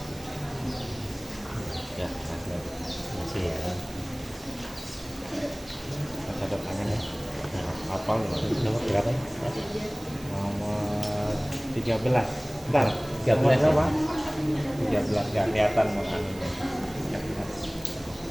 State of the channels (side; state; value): right; noise; hiss, 19 dB below the sound